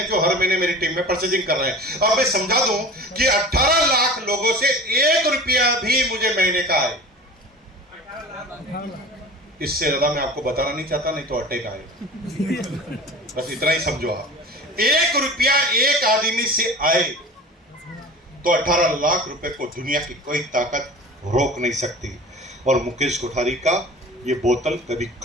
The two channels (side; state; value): both; normal; correlation 0.38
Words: जो हर महीने मेरी टीम में परचेजिंग कर रहे हैं। अब मैं समझा दूं कि 18 लाख लोगों से 1 रुपया भी मुझे महीने का आए, इससे ज्यादा मैं आपको बताना नहीं चाहता, नहीं तो अटैक आएगा। बस इतना ही समझो आप। 1 रुपया एक आदमी से आए तो 18 लाख रुपए को दुनिया की कोई ताकत रोक नहीं सकती। और मुकेश कोठारी का ये बोतल कभी